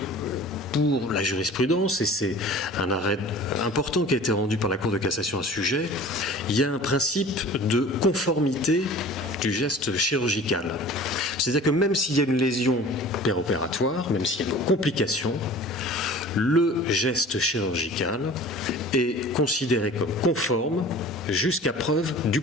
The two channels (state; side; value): normal; both; correlation 0.43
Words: pour la jurisprudence, et c'est un arrêt important qui a été rendu par la Cour de cassation à ce sujet, il y a un principe de conformité du geste chirurgical. C'est-à-dire que même s'il y a une lésion péropératoire, même s'il y a une complication, le geste chirurgical est considéré comme conforme jusqu'à preuve du